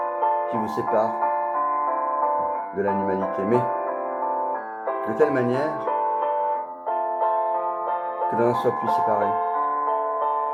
qui vous sépare de l'animalité. Mais de telle manière que l'on en soit plus séparé.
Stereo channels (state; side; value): identical; both; correlation 1.00